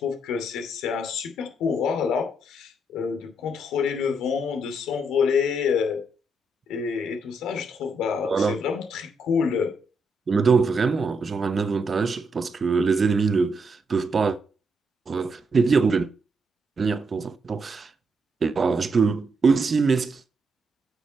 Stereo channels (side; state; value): both; normal; correlation 0.78